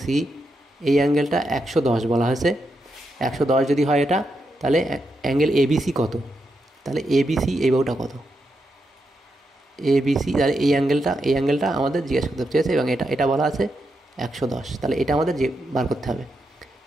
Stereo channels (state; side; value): normal; both; correlation 0.84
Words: সি এই অ্যাঙ্গেলটা 110 বলা হয়েছে। 110 যদি হয় এটা, তাহলে অ্যাঙ্গেল এবিসি কত? তাহলে এবিসি এই বাহুটা কত? এবিসি, তাহলে এই অ্যাঙ্গেলটা আমাদের জিজ্ঞেস করতে চেয়েছে এবং এটা বলা আছে 110, তাহলে এটা আমাদের বার করতে হবে।